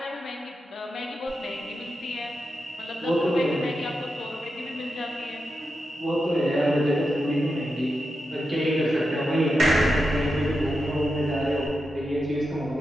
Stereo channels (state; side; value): normal; both; correlation 0.88